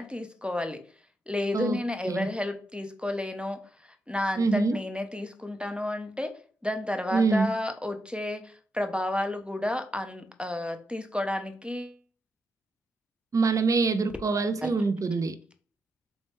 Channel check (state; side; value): normal; both; correlation 0.83